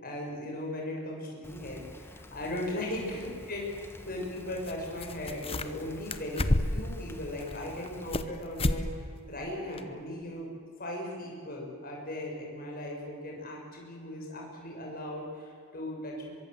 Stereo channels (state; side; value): normal; both; correlation 0.51